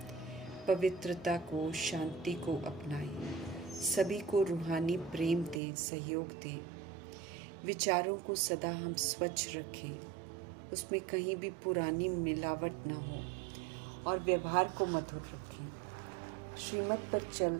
पवित्रता को, शांति को अपनाएं, सभी को रूहानी प्रेम दें, सहयोग दें। विचारों को सदा हम स्वच्छ रखें, उसमें कहीं भी पुरानी मिलावट न हो और व्यवहार को मधुर रखें। श्रीमत पर चल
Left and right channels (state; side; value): drops out; left; at 5.6 s